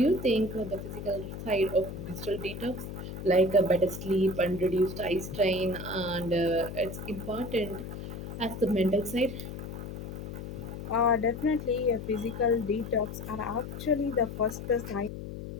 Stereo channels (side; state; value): left; noise; hum, 8 dB below the sound